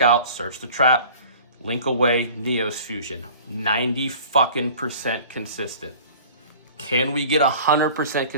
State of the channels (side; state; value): both; inverted; correlation -0.44